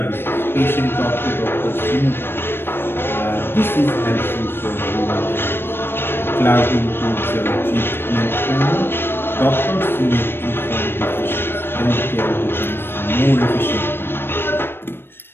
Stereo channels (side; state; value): right; late; 0.10 ms